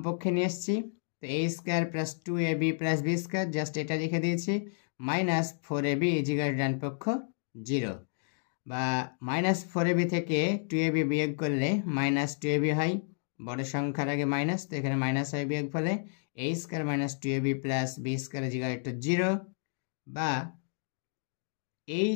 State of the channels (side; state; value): right; silent; digital silence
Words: পক্ষে নিয়ে আসছি, তো a square plus 2ab plus b square, just এটা লিখে দিয়েছি, -4ab = ডান পক্ষ 0। বা -4ab থেকে 2ab বিয়োগ করলে -2ab হয়, বড় সংখ্যার আগে মাইনাস, তো এখানে মাইনাস হয় বিয়োগ ফলে a square - 2ab plus b square = 0। বা